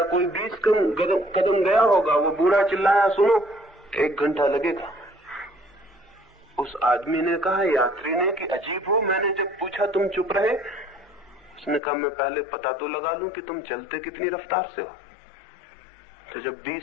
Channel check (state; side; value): drops out; right; at 11.8 s